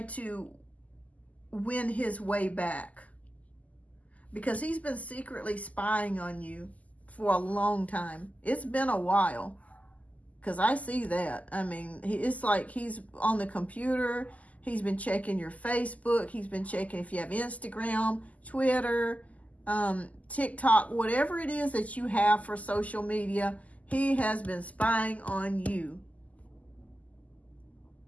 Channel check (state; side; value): late; right; 0.074 ms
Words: to win his way back. Because he's been secretly spying on you for a long time. It's been a while. Because I see that. I mean, it's like he's on the computer. He's been checking your Facebook. He's been checking if you have Instagram, Twitter, TikTok, whatever it is that you have for social media. He has been spying on you.